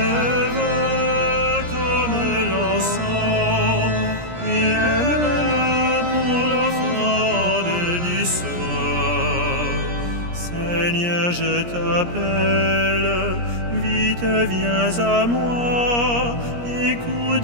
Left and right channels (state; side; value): late; left; 17 ms